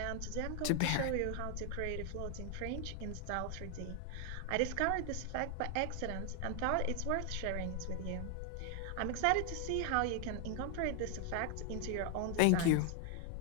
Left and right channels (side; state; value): both; different; correlation 0.00